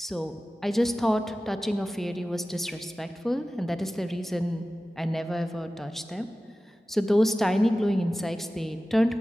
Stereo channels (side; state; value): both; normal; correlation 0.96